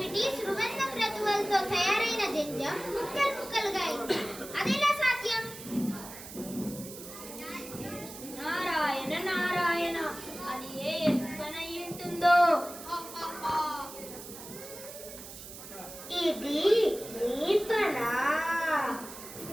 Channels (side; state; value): right; noise; hiss, 13 dB below the sound